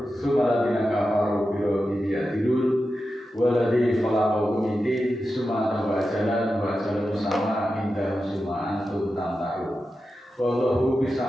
summa ladzina kafaru bi rabbihim ya'dilun walladzi khalaqakum min tin summa tawajalan wa jalan sama inda summa antum tamtarun wallahu bis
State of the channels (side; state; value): both; normal; correlation 0.91